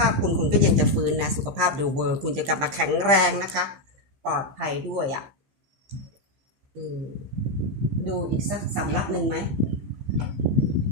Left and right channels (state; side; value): late; left; 15 ms